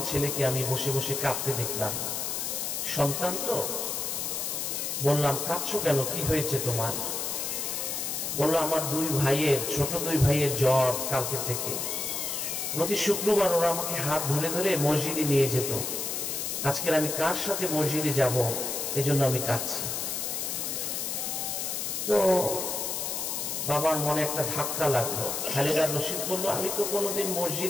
ছেলেকে আমি বসে বসে কাঁদতে দেখলাম। সন্তান তো, বললাম কাঁদছো কেন, কি হয়েছে তোমার? বললো আমার ছোট দুই ভাইয়ের জ্বর কালকে থেকে। প্রতি শুক্রবার ওরা আমাকে হাত ধরে ধরে মসজিদে নিয়ে যেত। আজকের আমি কার সাথে মসজিদে যাব, এজন্য আমি কাঁদছি। তো বাবার মনে একটা ধাক্কা লাগলো। খালেদা রশিদ বললো আমি তো কোনোদিন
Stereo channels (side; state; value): left; noise; hiss, 2 dB below the sound